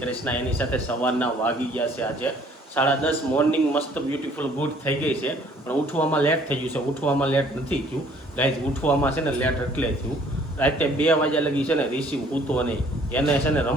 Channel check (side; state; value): both; normal; correlation 0.58